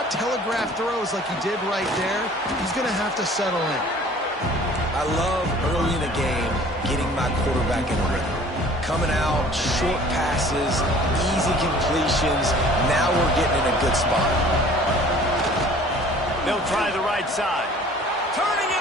telegraph throws like he did right there. He's going to have to settle in. I love early in the game getting my quarterback in a rhythm. Coming out, short passes, easy completions. Now we're getting in a good spot. They'll try the right side. Turning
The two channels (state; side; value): normal; both; correlation 0.50